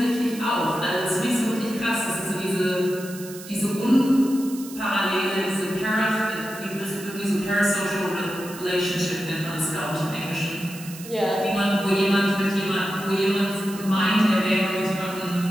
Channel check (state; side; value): noise; right; hiss, 15 dB below the sound